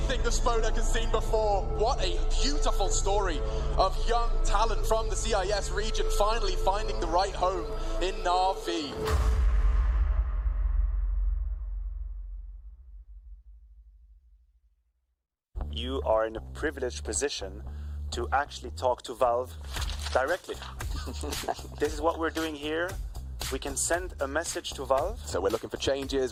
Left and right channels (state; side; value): identical; both; correlation 1.00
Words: bravest Spodek has seen before. What a beautiful story of young talent from the CIS region finally finding the right home in Na'Vi. You are in a privileged position to actually talk to Valve directly. This is what we're doing here. We can send a message to Valve. So we're looking for